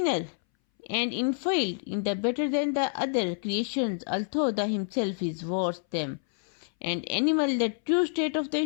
and inferior in the better than the other creations, although the himself is worse them. And animal, the true state of the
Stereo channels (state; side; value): silent; right; 59 dB below the other